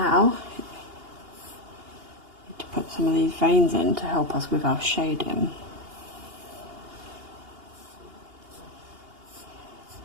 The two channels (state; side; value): late; left; 2.8 ms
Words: we need to put some of these veins in to help us with our shading.